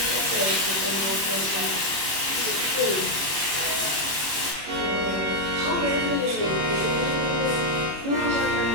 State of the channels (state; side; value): late; left; 25 ms